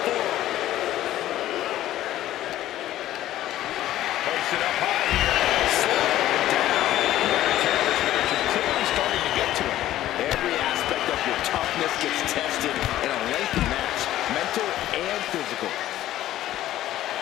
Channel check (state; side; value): quieter; right; 13.7 dB